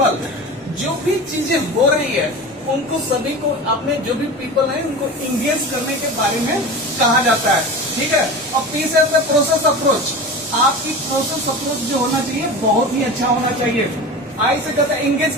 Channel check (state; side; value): normal; both; correlation 0.31